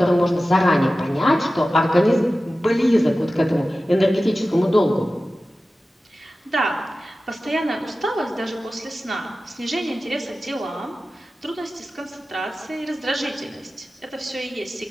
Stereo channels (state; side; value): normal; both; correlation 0.95